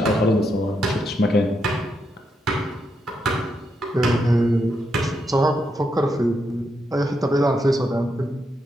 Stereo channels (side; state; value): both; normal; correlation 0.81